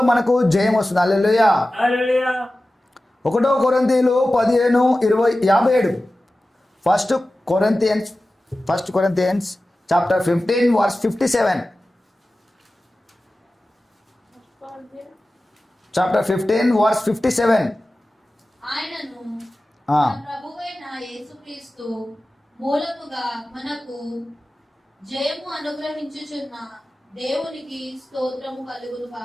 మనకు జయం వస్తుంది. హల్లెలూయా. 1 కొరింథీయులు 15:57. First Corinthians chapter 15 verse 57. Chapter 15 verse 57. ఆయనను ఆ. మన ప్రభువైన యేసుక్రీస్తు మూలముగా మనకు జయము అనుగ్రహించుచున్న దేవునికి స్తోత్రము కలుగును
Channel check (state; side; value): normal; both; correlation 0.95